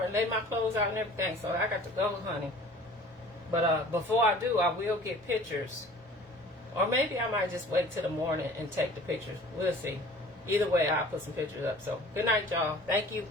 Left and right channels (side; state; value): both; normal; correlation 0.47